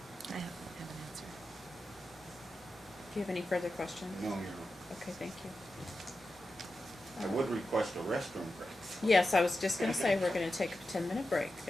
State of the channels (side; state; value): both; normal; correlation 0.91